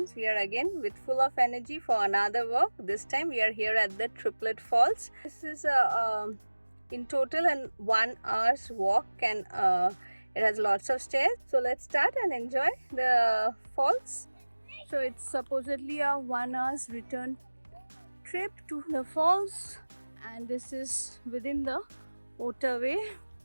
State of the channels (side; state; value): both; inverted; correlation -1.00